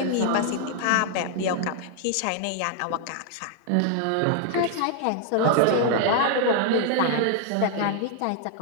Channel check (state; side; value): different; both; correlation 0.00